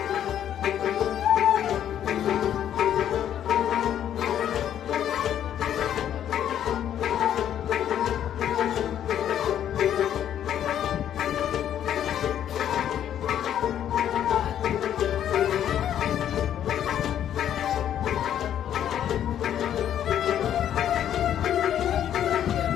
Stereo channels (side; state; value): right; quieter; 10.3 dB